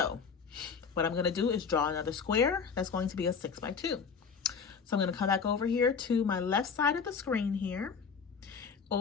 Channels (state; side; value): quieter; right; 5.8 dB